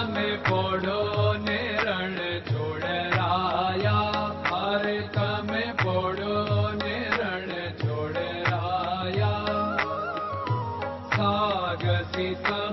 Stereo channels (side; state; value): both; identical; correlation 1.00